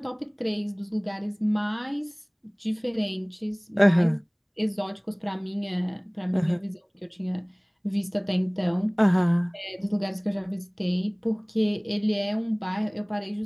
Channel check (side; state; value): both; identical; correlation 1.00